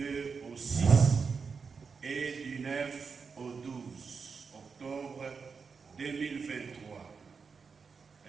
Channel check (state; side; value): quieter; left; 5.3 dB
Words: au 6 et du 9 au 12 octobre 2023.